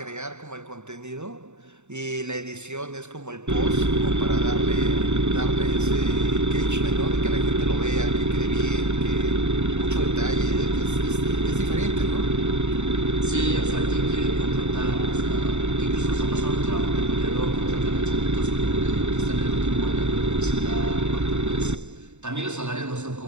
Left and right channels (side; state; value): left; late; 0.83 ms